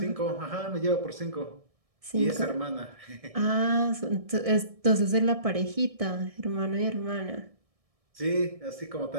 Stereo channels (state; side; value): late; left; 1.6 ms